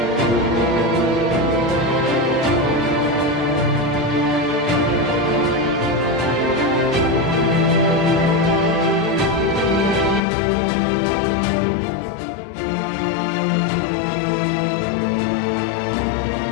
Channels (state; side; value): drops out; right; at 10.2 s